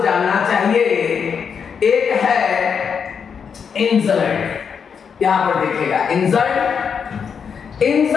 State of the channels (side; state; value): right; quieter; 6.7 dB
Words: जानना चाहिए। एक है इंजर्ड, यहां पर देखिएगा